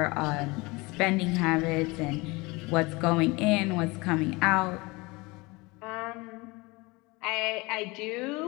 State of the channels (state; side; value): quieter; right; 24.3 dB